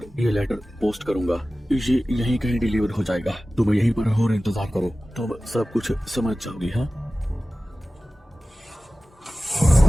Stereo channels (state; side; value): normal; both; correlation 0.96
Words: ये लेटर पोस्ट करूंगा। ये यहीं कहीं डिलीवर हो जाएगा। तुम यहीं पर और इंतजार करो, तुम सब कुछ समझ जाओगी। हाँ,